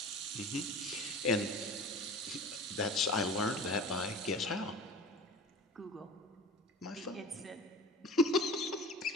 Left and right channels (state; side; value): normal; both; correlation 0.38